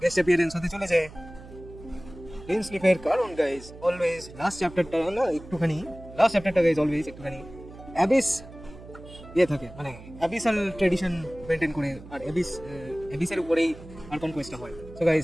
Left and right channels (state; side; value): noise; right; hum, 17 dB below the sound